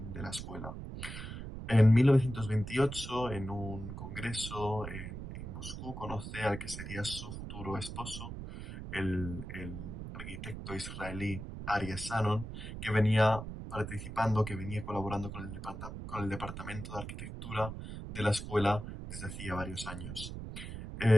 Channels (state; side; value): noise; right; rumble, 8 dB below the sound